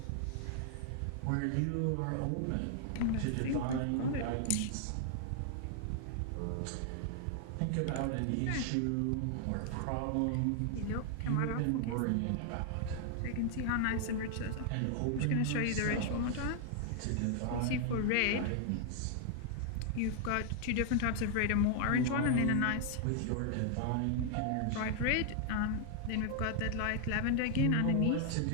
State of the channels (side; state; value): both; different; correlation 0.00